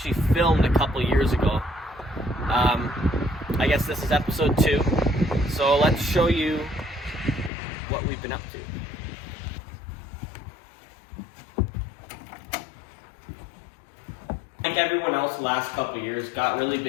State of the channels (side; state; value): right; drops out; at 7.5 s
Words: filmed a couple years ago. I guess this is episode 2. So let's show you what we've been up to. Like everyone else the last couple of years, got really